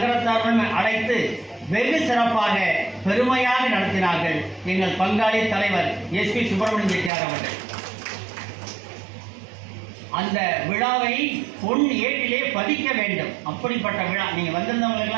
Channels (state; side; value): drops out; left; at 7.1 s